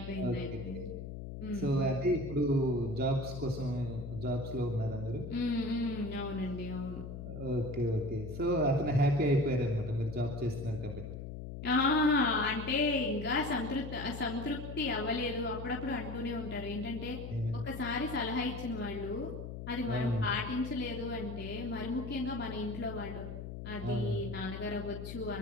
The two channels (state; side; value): noise; left; hum, 8 dB below the sound